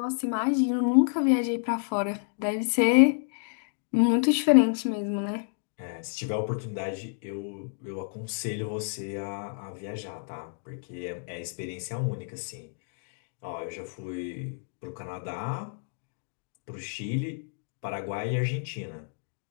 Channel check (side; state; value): right; silent; digital silence